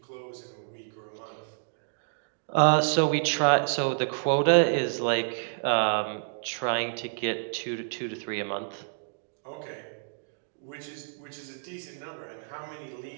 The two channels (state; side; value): silent; left; digital silence